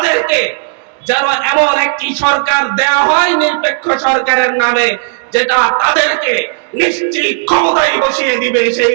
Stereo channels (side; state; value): left; silent; digital silence